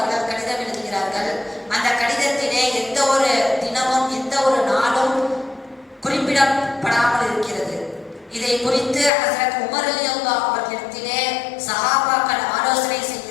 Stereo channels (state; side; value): drops out; right; at 9.1 s